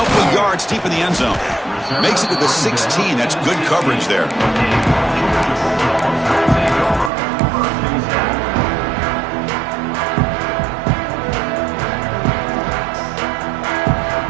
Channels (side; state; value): left; drops out; at 7.1 s